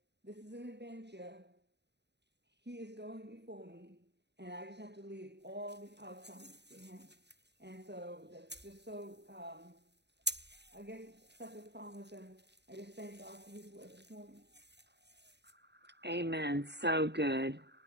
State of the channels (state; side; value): late; left; 0.50 ms